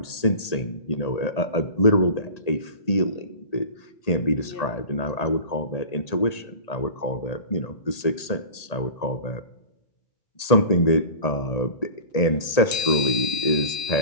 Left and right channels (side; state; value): right; late; 1.8 ms